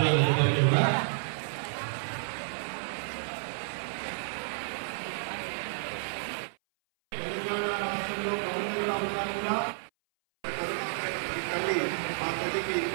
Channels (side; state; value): left; silent; 57 dB below the other